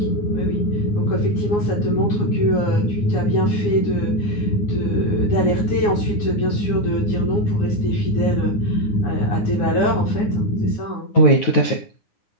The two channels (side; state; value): right; late; 9.6 ms